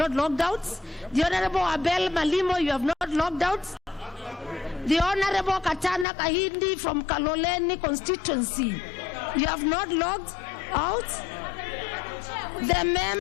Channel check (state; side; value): drops out; right; at 6.1 s